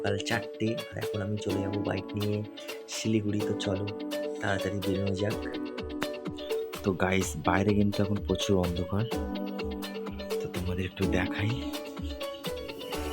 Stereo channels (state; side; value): identical; both; correlation 1.00